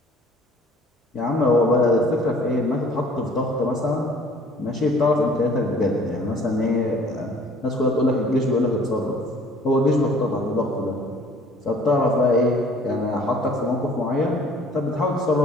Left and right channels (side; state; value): both; normal; correlation 0.53